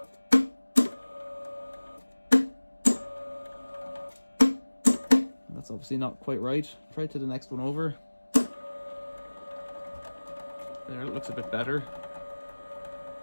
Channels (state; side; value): inverted; both; correlation -1.00